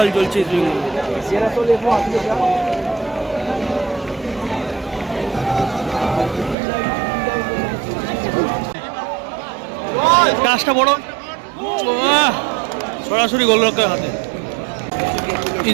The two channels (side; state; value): left; drops out; at 6.6 s